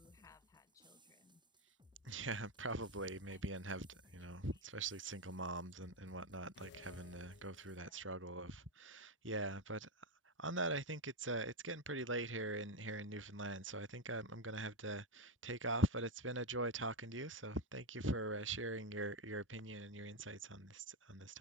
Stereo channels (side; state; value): both; normal; correlation 0.08